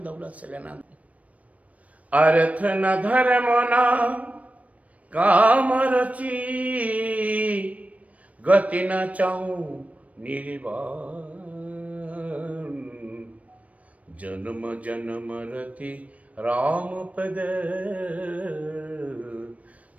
दौलत से लेना। अर्थ न धर्म न काम रची, गति न चाहूं निर्वाण, जन्म जन्म रति राम पद,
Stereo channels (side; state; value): left; late; 0.067 ms